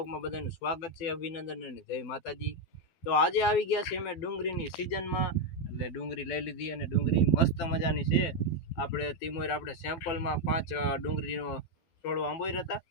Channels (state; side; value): late; right; 12 ms